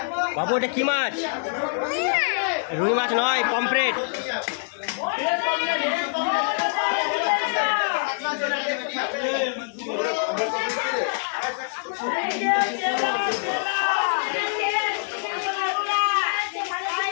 বাবু এটা কি মাছ? রুই মাছ নয়, পমফ্রেট।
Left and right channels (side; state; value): right; silent; digital silence